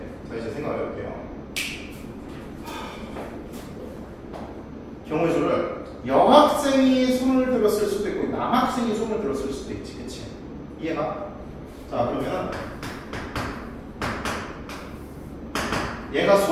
자, 이제 생각을 해볼게요. 경우의 수를 여학생이 손을 들었을 수도 있고 남학생이 손을 들었을 수도 있지, 그치? 이해가? 자, 그러면 얘가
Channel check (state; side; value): identical; both; correlation 1.00